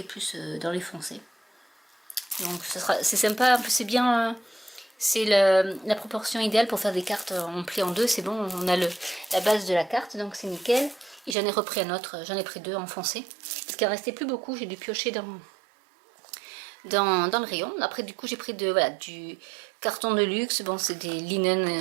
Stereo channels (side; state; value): left; drops out; at 11.4 s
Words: est plus dans les foncés. Donc c'est sympa, c'est bien, c'est la proportion idéale pour faire des cartes en pli en deux. C'est bon, on a la base de la carte, donc c'est nickel. Et j'en ai repris un autre, j'en ai pris 2 en foncé parce qu'il en restait plus beaucoup. J'ai dû piocher dans le rayon. Après du coup j'ai pris voilà, du carton de luxe. Bon, c'est des